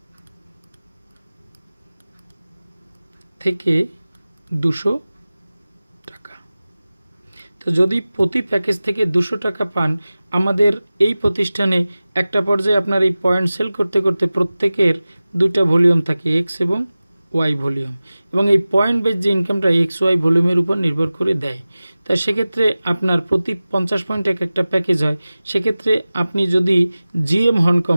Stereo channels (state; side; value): inverted; both; correlation -0.97